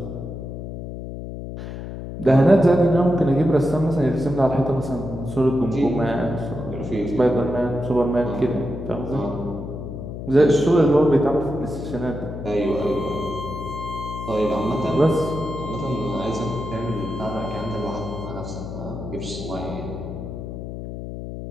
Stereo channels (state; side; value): noise; left; hum, 8 dB below the sound